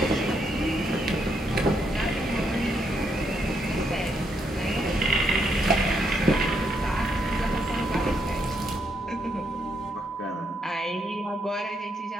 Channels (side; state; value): both; normal; correlation 0.76